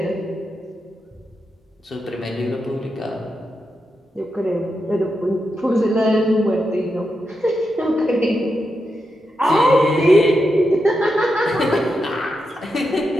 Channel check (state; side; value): normal; both; correlation 0.86